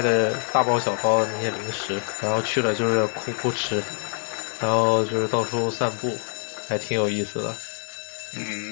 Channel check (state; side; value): quieter; right; 39.2 dB